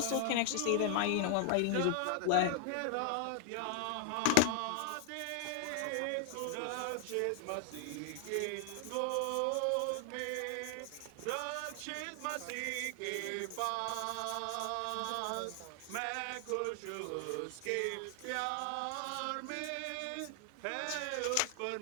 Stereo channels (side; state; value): both; different; correlation 0.00